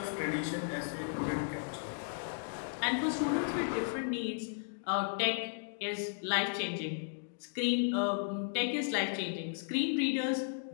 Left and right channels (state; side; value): silent; right; digital silence